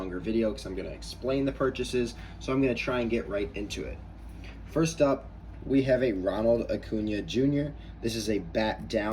video because I'm going to explain the purchases, so I'm going to try and get right into it. First up, we have a Ronald Acuna Jr. This is a bat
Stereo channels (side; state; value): both; identical; correlation 1.00